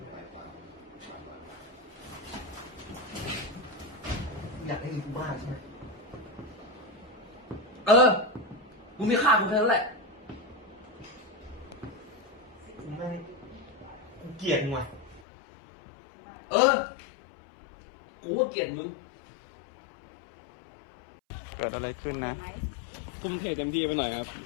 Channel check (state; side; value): drops out; right; at 15.2 s